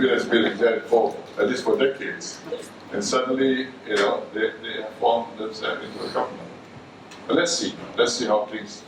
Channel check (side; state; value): both; identical; correlation 1.00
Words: that's been exact for at least for decades. And suddenly, they have formed themselves into a government. But let's see how things,